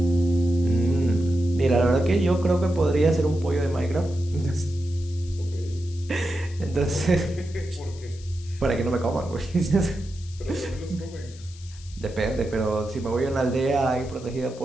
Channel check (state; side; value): noise; left; hiss, 21 dB below the sound